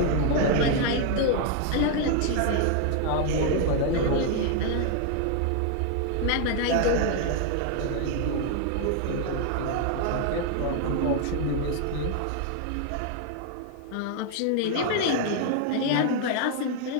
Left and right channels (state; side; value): different; both; correlation 0.00